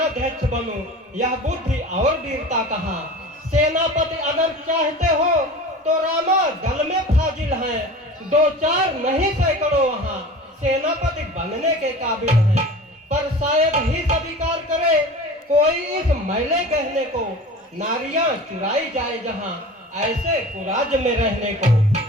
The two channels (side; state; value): both; normal; correlation 0.37